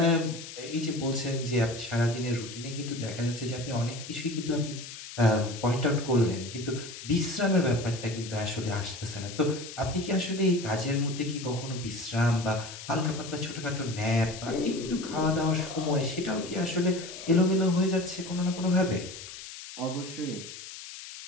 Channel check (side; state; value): left; noise; hiss, 12 dB below the sound